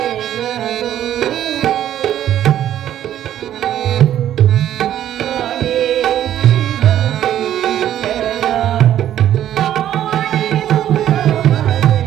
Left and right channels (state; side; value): quieter; left; 11.5 dB